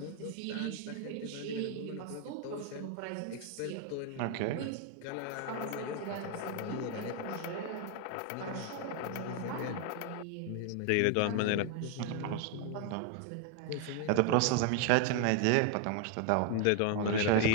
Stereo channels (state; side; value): different; both; correlation 0.00